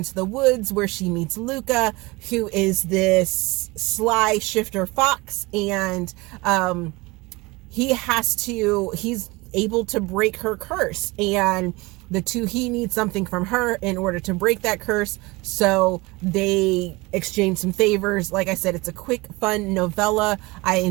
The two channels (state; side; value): quieter; left; 23.6 dB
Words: the woods where she meets Luca, who is this sly shifter fox, and he's able to break her curse, and he needs something from her in order to break that curse. So they exchange some favors. Like I said, it's a quick, fun novella. I